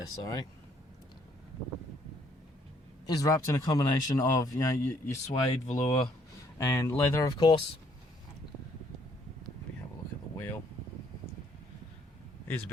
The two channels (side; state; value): both; normal; correlation 0.66